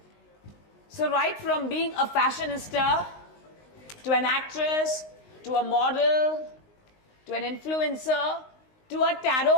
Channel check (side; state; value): right; late; 19 ms